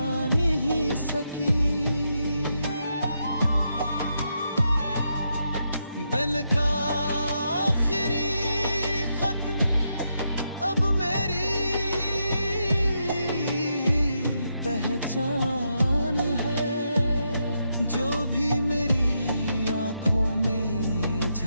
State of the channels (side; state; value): both; inverted; correlation -0.81